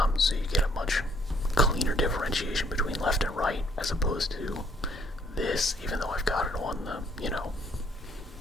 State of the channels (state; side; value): normal; both; correlation 0.64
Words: So you get a much cleaner differentiation between left and right, as opposed to this, even though I've got it on the,